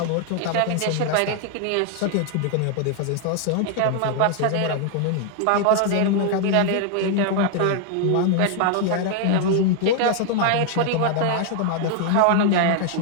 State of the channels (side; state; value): both; different; correlation 0.00